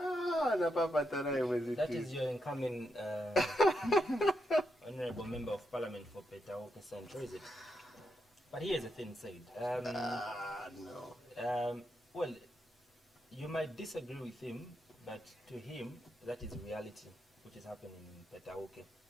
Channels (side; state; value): both; normal; correlation 0.83